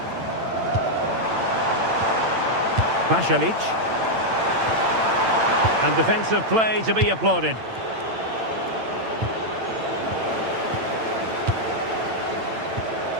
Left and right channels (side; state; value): left; late; 8.9 ms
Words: Pasalic. And defensive play to be applauded.